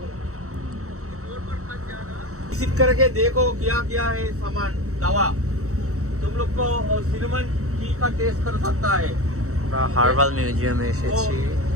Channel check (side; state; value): left; late; 0.64 ms